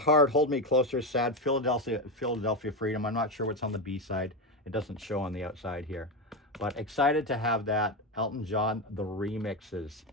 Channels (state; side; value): normal; both; correlation 0.13